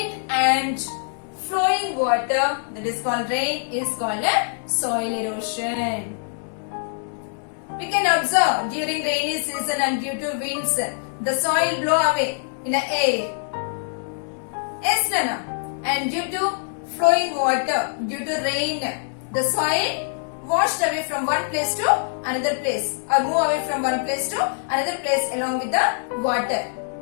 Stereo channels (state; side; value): silent; right; digital silence